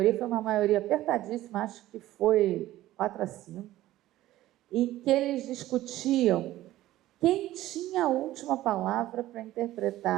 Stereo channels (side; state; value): left; quieter; 15.2 dB